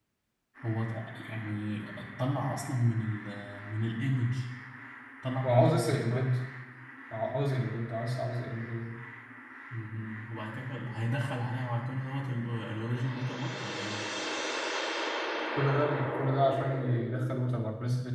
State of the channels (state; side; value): identical; both; correlation 1.00